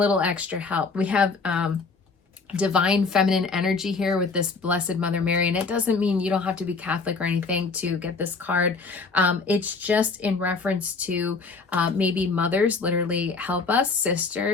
extra help. We have divine feminine energy here with this Blessed Mother Mary, and it doesn't mean you don't have to be Catholic or anything to get this card. It's just in reference to maybe mothers literally help us,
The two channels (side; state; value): right; quieter; 4.4 dB